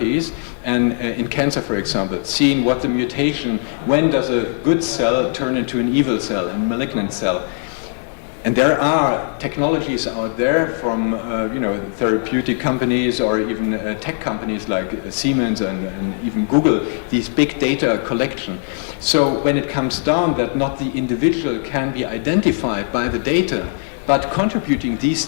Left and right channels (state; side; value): silent; right; 60 dB below the other